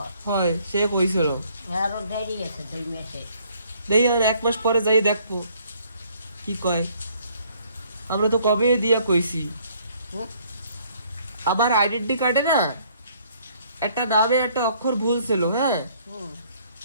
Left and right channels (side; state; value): both; inverted; correlation -0.62